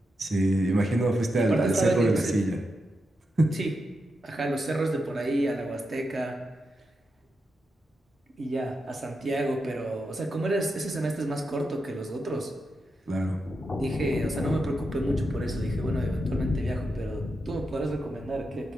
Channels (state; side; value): normal; both; correlation 0.86